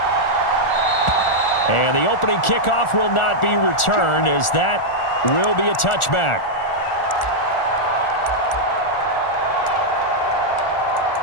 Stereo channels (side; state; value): right; late; 1.4 ms